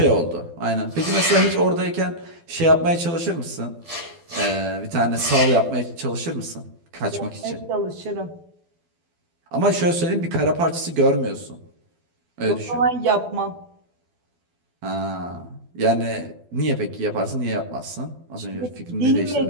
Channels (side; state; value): left; late; 12 ms